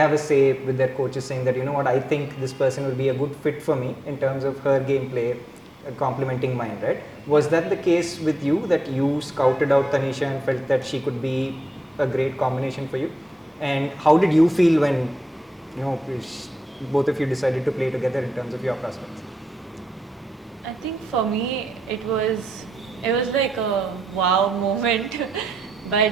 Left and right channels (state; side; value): normal; both; correlation 0.86